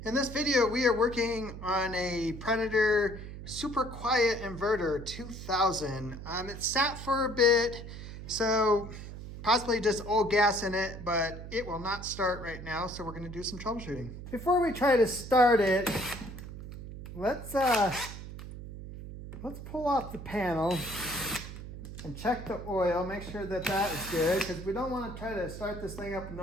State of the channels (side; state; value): right; noise; hum, 11 dB below the sound